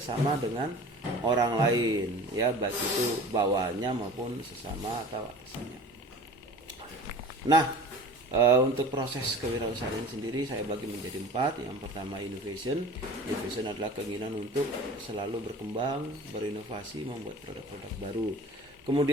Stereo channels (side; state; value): both; normal; correlation 0.41